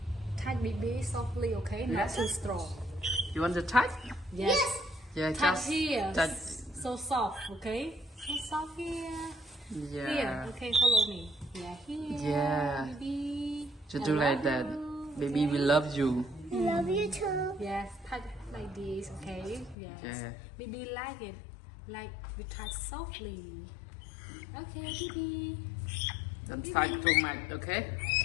Touch Bibi softly, okay? Not Yes. too strong. You want to touch? Yes. Yeah, Touch just here. touch. So soft, okay? So soft here. Yeah. Here, okay, follow me. Yeah, here. Yeah. Bibi. Just I do like love that. you, Baby, okay? we love you. I love you too. Yes, touch like this, okay? Yes. Yeah. Baby like it. Like we touch softly. Okay, Bibi. Don't touch too much, okay?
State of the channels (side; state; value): right; drops out; at 19.8 s